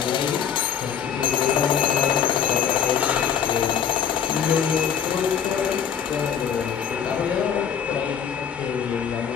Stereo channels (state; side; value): quieter; right; 8.1 dB